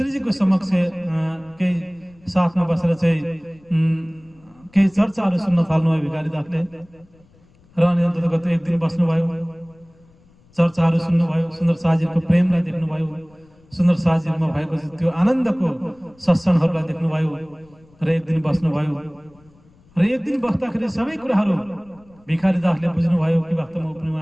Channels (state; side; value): noise; left; rumble, 30 dB below the sound